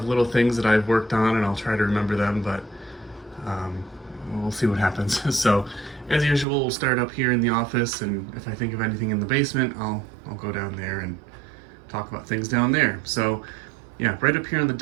little things that I've worked on, and I'll try to remember them, but um, we'll see what happens. So, as usual, we'll start up here in the office, and if I think of anything in the basement, I'll go down there and talk about things down there. So, yeah, right up here on the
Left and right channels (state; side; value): drops out; left; at 6.5 s